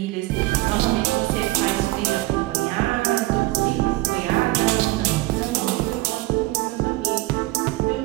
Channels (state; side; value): quieter; left; 20.2 dB